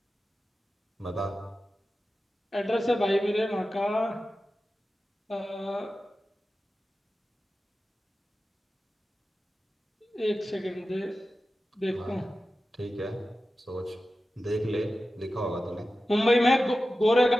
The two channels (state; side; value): normal; both; correlation 0.94